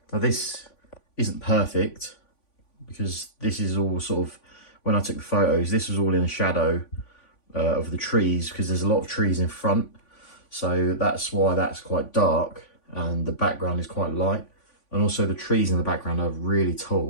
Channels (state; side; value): late; right; 3.5 ms